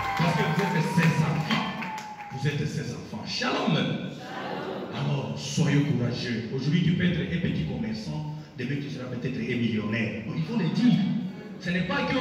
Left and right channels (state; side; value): identical; both; correlation 1.00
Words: Parce que vous êtes ses enfants. Vous êtes ses enfants. Shalom. Alors, soyez courageux. Aujourd'hui, tu peux être un petit commerçant. Demain, tu seras peut-être un millionnaire. Donc, il faut le dire. Ce n'est pas